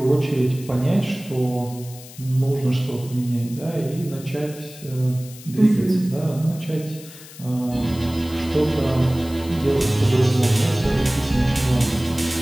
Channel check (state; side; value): noise; left; hiss, 18 dB below the sound